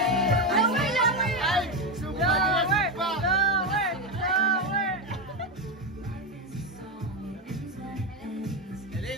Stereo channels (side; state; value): both; normal; correlation 0.12